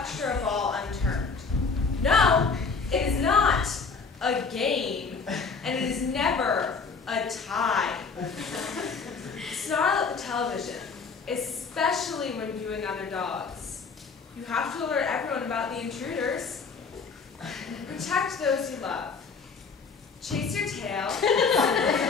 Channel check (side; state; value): right; quieter; 5.0 dB